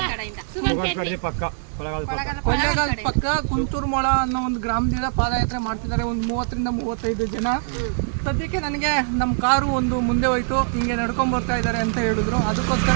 ಕೊಳ್ಳೇಗಾಲ ಪಕ್ಕ ಕುಂತೂರ್ಮೊಳ ಅನ್ನೋ ಒಂದು ಗ್ರಾಮದಿಂದ ಪಾದಯಾತ್ರೆ ಮಾಡ್ತಿದ್ದಾರೆ. ಒಂದು 30 ರಿಂದ 35 ಜನ. ಸದ್ಯಕ್ಕೆ ನನಗೆ ನಮ್ಮ ಕಾರು ಒಂದು ಮುಂದೆ ಹೋಯ್ತು, ಹಿಂಗೆ ನಡ್ಕೊಂಡ್ ಬರ್ತಾ ಇದ್ದಾರೆ ಅಂತ ಹೇಳಿದ್ರು.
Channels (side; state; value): left; silent; digital silence